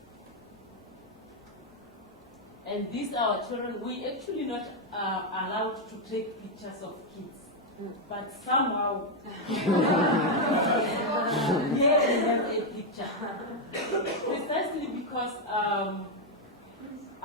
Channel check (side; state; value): both; normal; correlation 0.01